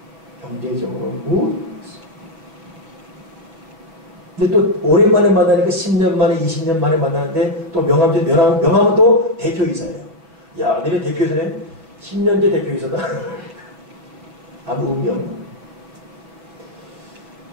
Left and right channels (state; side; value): late; left; 6.2 ms